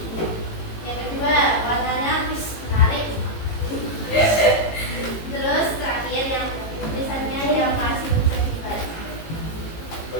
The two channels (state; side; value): late; right; 18 ms